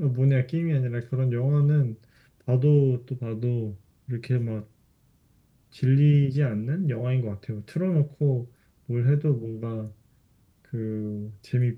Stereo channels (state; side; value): identical; both; correlation 1.00